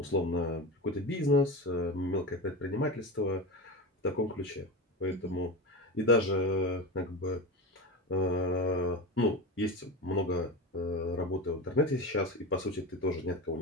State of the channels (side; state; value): both; normal; correlation 0.23